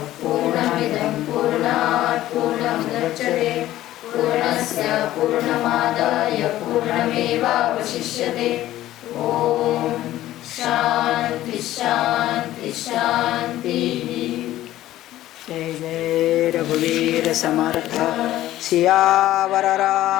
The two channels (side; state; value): right; quieter; 14.5 dB